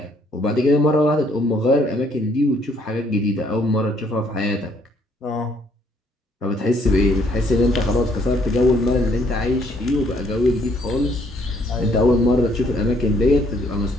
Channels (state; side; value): normal; both; correlation 0.66